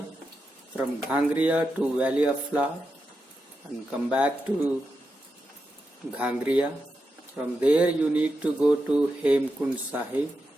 from Ghangriya to Valley of Flower, and come back to Ghangriya. From there you need to go to Hemkund Sahib,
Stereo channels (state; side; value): normal; both; correlation 0.87